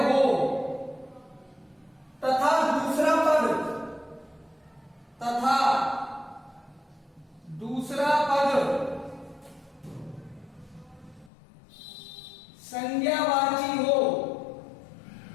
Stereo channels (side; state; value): right; drops out; at 11.3 s